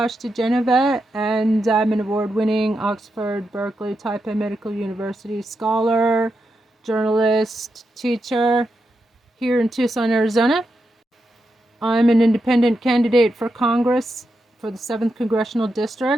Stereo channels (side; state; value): both; normal; correlation 0.86